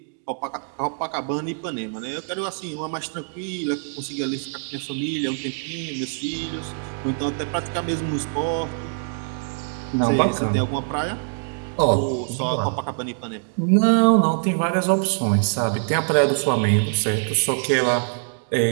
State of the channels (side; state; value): left; silent; digital silence